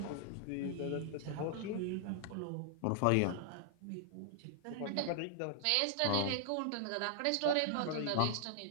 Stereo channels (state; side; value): different; both; correlation -0.01